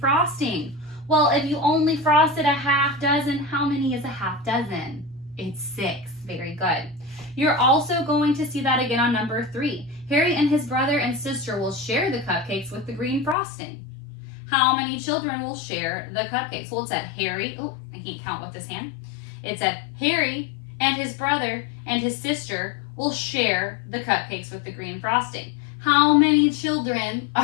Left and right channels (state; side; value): drops out; right; at 13.4 s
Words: Well, if you only frosted a half dozen, how many is a half dozen? It's 6. Very good. You're also going to see that again on number 3. Harry and his brother and sister will share the cupcakes with the green frosting. How many children will share the cupcakes? Well, it said Harry. Oh, I can't count with this hand. It said Harry and his brother and his sister will share the cupcakes with the green frosting. How many children